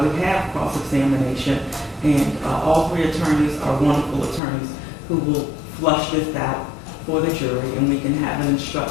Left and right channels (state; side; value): drops out; right; at 4.4 s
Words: have cross-examination, and all three attorneys are wonderful attorneys who will flush this out for the jury, and we can have an